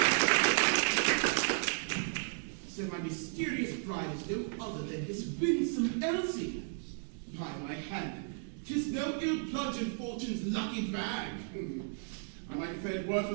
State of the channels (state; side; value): silent; left; 55 dB below the other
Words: So my mysterious bride is no other than this winsome Elsie. By my hand, 'tis no ill plunge in fortune's lucky bag. I might have fared worse